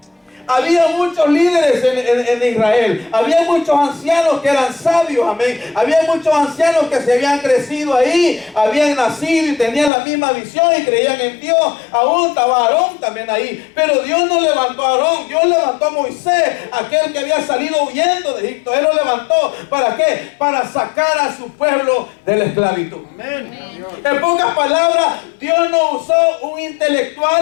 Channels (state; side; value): drops out; right; at 9.9 s